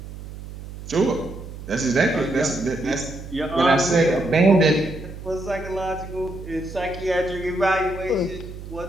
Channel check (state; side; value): noise; right; hum, 12 dB below the sound